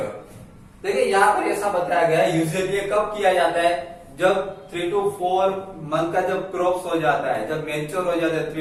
देखिए यहाँ पर ऐसा बताया गया है, यूजुअली कब किया जाता है, जब 3 to 4 मंथ का जब क्रॉप्स हो जाता है, जब मैच्योर हो जाता है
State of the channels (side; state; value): both; identical; correlation 1.00